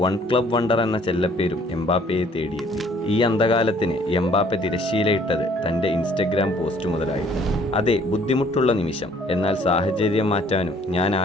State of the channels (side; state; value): both; normal; correlation 0.59